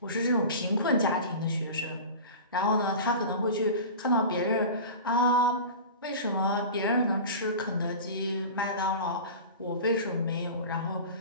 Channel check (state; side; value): inverted; both; correlation -0.33